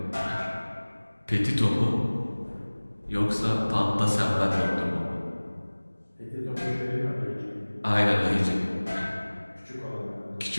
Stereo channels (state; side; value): inverted; both; correlation -1.00